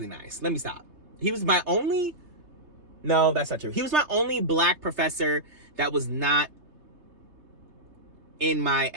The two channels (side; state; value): left; late; 3.3 ms